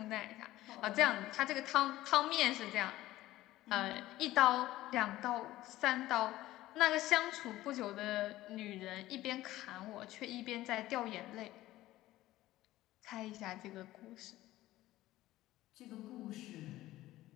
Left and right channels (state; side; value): quieter; right; 16.0 dB